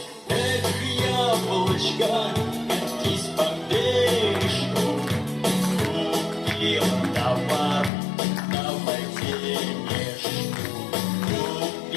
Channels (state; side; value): drops out; right; at 7.9 s